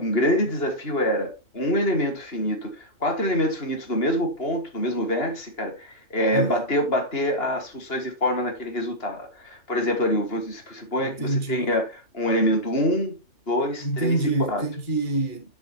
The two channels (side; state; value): right; late; 2.9 ms